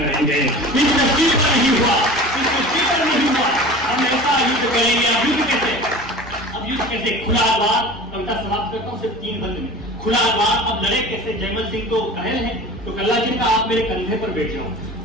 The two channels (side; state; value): both; normal; correlation 0.38